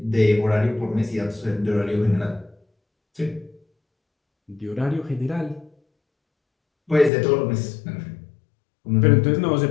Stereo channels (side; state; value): right; drops out; at 7.1 s